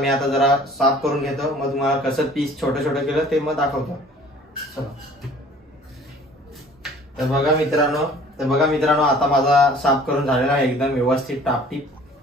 आता जरा साफ करून घेतो, मग तुम्हाला कसं पीस छोटं छोटं केलं ते मग दाखवतो. चला. तर बघा मित्रांनो आता माझा साफ करून झालेला आहे एकदम व्यवस्थित टापटीप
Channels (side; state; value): both; normal; correlation 0.50